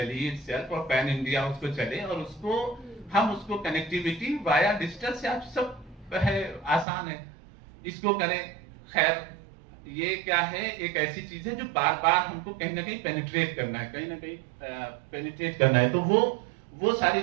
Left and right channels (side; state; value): left; drops out; at 6.9 s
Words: itself और पैन इंडिया उसको चले, और उसको हम उसको कनेक्टिविटी वाया डिजिटल से आप सब है, आसान है, इसको करें। खैर ये क्या है, एक ऐसी चीज है जो बार बार हमको कहीं ना कहीं पेनिट्रेट करना है, कहीं ना कहीं पेनिट्रेट करना है। तो वो